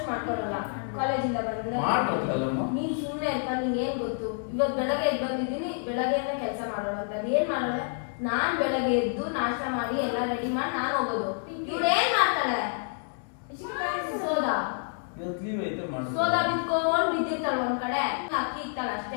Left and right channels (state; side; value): silent; right; 59 dB below the other